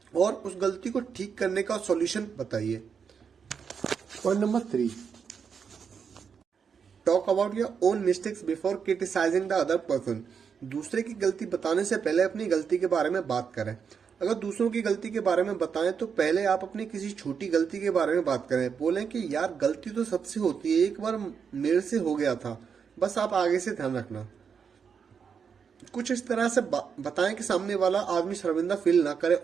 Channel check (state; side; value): quieter; left; 6.6 dB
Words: और उस गलती को ठीक करने का सॉल्यूशन बताइए। Point number 3, talk about your own mistakes before criticising the other person. दूसरे की गलती बताने से पहले अपनी गलती के बारे में बात करें। अगर दूसरों की गलती के बारे में बताएं तो पहले आप अपनी किसी छोटी गलती के बारे में बात करें। बोलें कि यार गलती तो सबसे होती है, एक बार मेरे से हो गया था, बस आप आगे से ध्यान रखना। कुछ इस तरह से बताएं कि सामने वाला आदमी शर्मिंदा फील ना करे,